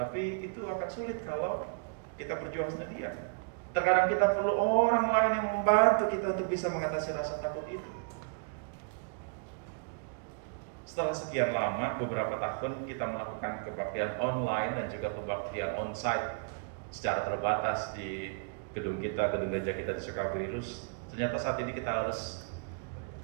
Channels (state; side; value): quieter; left; 36.5 dB